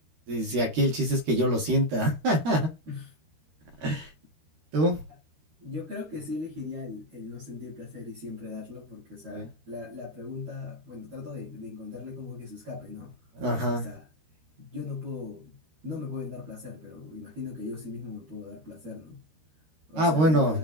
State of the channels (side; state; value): left; late; 13 ms